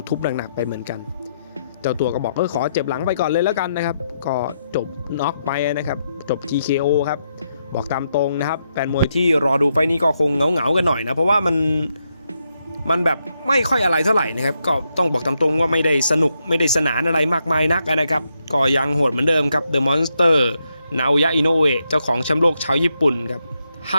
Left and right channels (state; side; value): inverted; both; correlation -0.81